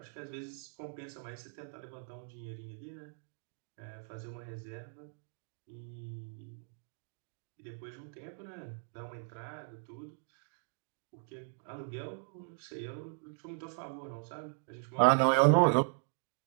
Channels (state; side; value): silent; left; 53 dB below the other